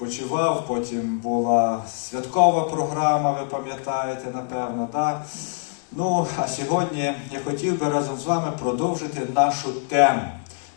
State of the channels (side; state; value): right; silent; digital silence